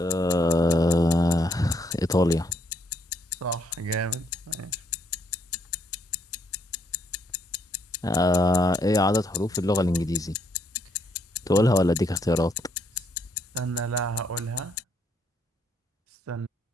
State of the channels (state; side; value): normal; both; correlation 0.71